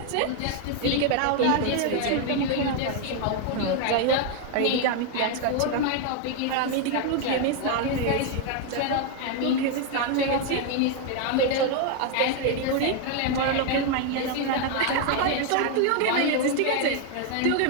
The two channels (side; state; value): both; different; correlation 0.01